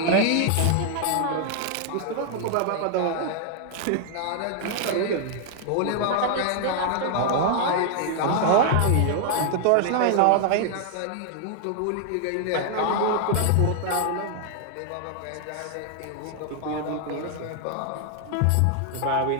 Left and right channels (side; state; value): both; different; correlation 0.00